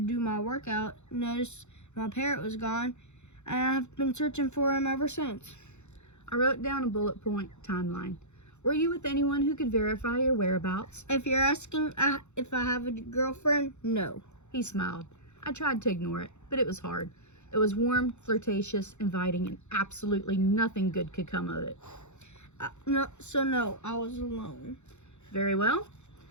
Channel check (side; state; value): right; late; 0.83 ms